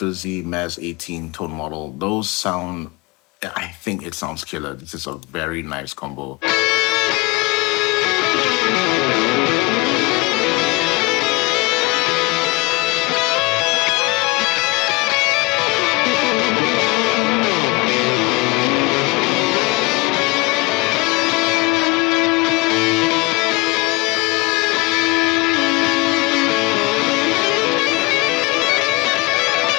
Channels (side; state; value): right; quieter; 23.8 dB